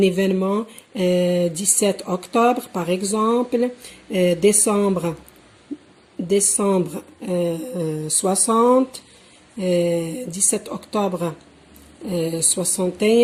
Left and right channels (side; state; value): both; identical; correlation 1.00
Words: événement 17 octobre, par exemple, décembre 60, 17 octobre